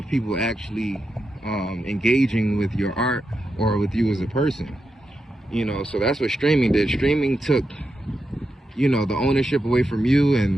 people actually engaging with your art or with you as a person. So that's what streaming did. Streaming took the ownership away from you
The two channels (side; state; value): both; normal; correlation 0.87